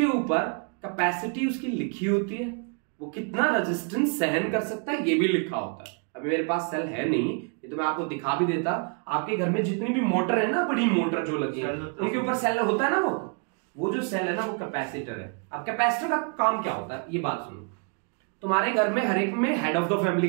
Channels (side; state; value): left; quieter; 39.1 dB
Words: ऊपर कैपेसिटी उसकी लिखी होती है, वो कितना रेजिस्टेंस सहन कर सकता है ये भी लिखा होता है। अभी मेरे पास सेल है नहीं, तो मैं आपको दिखा भी देता। आपके घर में जितनी भी मोटर है ना, बड़ी मोटर जो लगी है उनके ऊपर सेल होता है ना, वो जो सेल है ना वो कैपेसिटर है। अब कैपेसिटर का काम क्या होता है ये बात सुनो। तुम्हारे घर में हर एक में हेड ऑफ द